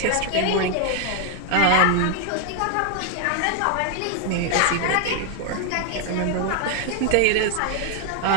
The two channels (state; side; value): different; both; correlation 0.00